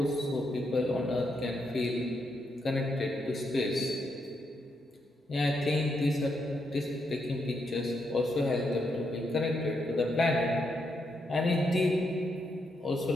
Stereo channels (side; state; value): both; normal; correlation 0.80